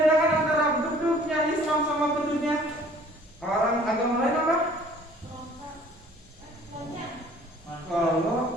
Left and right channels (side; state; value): both; normal; correlation 0.53